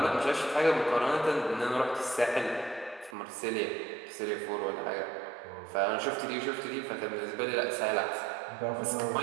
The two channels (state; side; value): drops out; left; at 3.2 s